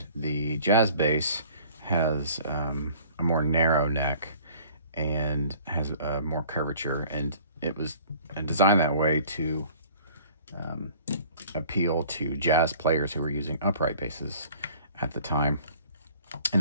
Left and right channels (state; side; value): inverted; both; correlation -0.51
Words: the jazz bass has a more narrow neck and has more curvature, and it was designed that way to appeal to jazz players who were using upright basses at the time,